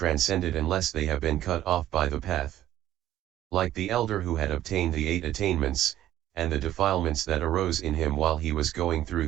unless they have been cut off by the path. Like the elder who had obtained the 8 attainments, and the defilements that arose in him while he was going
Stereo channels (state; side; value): quieter; left; 12.9 dB